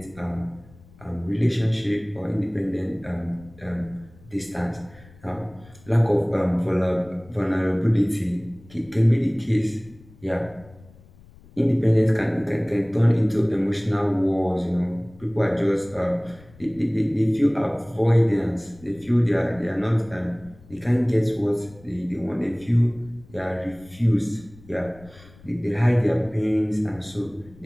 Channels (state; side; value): noise; left; rumble, 24 dB below the sound